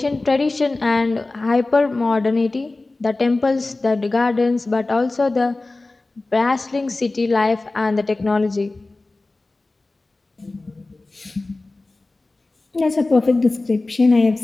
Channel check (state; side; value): quieter; right; 3.2 dB